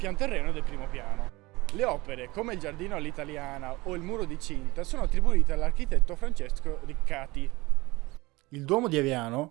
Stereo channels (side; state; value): left; quieter; 21.7 dB